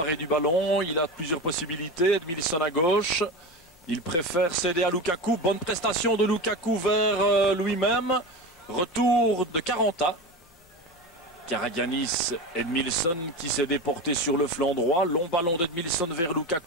du ballon, il a plusieurs possibilités. Edmilson à gauche, il préfère céder à Lukaku. Bonne prestation de Lukaku vers lui-même. Retour de Caranta. Karagianis, Edmilson qui s'est déporté sur le flanc droit. Long ballon d'Edmilson vers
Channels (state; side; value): normal; both; correlation 0.24